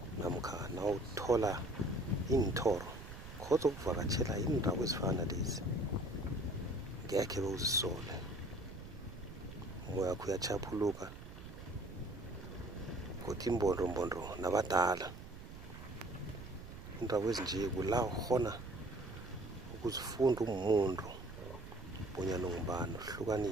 namkha nawuthola inthoro khodza ukuvakatshela indawo ezifana lezi ngekhe bewuzisole umoya wakho uyachaphuluka kodwa imbondombondo nabadala indawo ezinje kula ukhona ukuzifunda umuntu bonyana ungubani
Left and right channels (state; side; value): noise; right; rumble, 13 dB below the sound